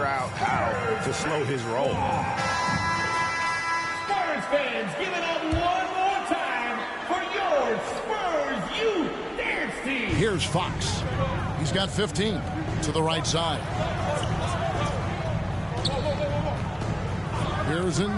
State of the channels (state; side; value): identical; both; correlation 1.00